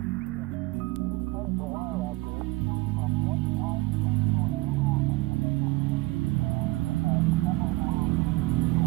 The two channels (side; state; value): left; quieter; 21.1 dB